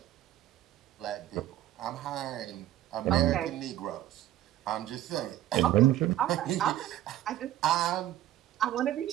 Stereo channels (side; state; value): left; quieter; 13.5 dB